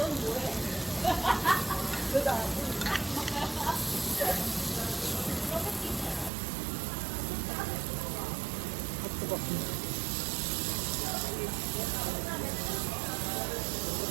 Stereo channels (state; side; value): drops out; left; at 6.3 s